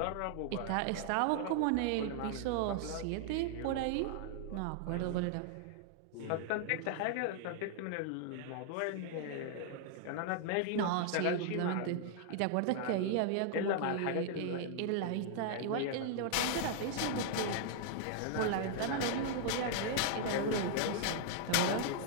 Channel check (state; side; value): different; both; correlation -0.01